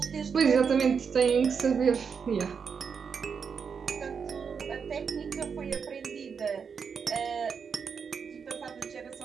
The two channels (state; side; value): quieter; left; 6.2 dB